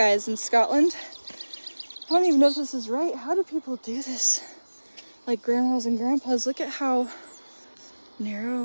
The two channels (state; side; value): inverted; both; correlation -1.00